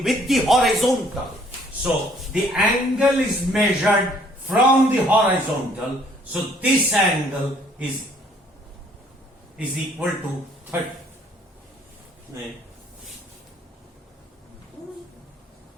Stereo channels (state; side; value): normal; both; correlation 0.61